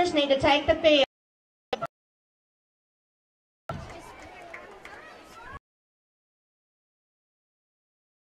need to take the field.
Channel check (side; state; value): both; identical; correlation 1.00